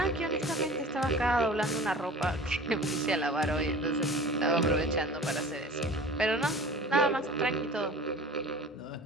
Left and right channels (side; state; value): both; normal; correlation 0.41